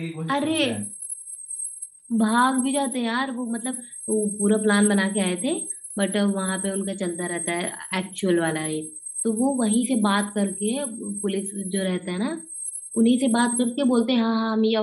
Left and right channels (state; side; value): identical; both; correlation 1.00